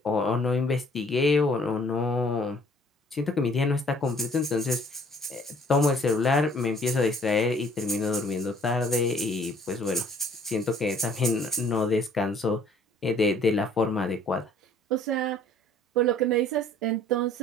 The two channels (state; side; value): normal; both; correlation 0.57